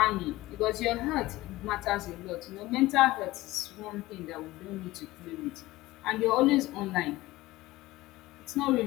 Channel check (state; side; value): quieter; right; 18.4 dB